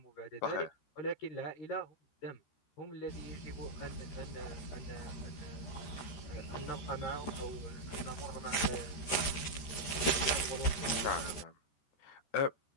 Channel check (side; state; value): right; late; 13 ms